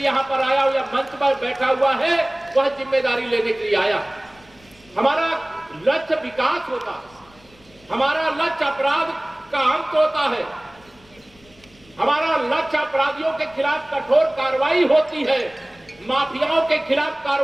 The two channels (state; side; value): noise; left; rumble, 28 dB below the sound